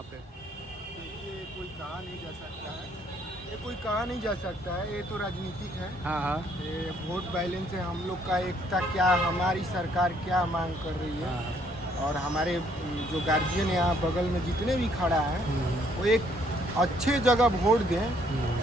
पे? ये कोई कहा नहीं जा सकता है, ये कोई कहा नहीं जा सकता है, ये तो राजनीतिक है। हाँ, ये वोट बैलेंस है, हम लोग का एकता क्या, हमारी सरकार क्या मांग कर रही है। और हमारे जो गार्जियन यहाँ बगल में जितने भी खड़ा है वो एक अच्छे जगह वोट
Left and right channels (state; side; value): normal; both; correlation 0.66